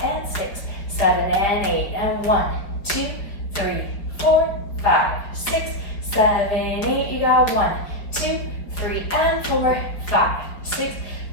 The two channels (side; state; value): right; late; 4.9 ms